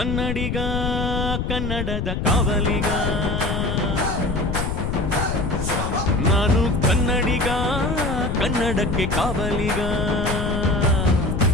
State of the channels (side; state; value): left; noise; rumble, 2 dB below the sound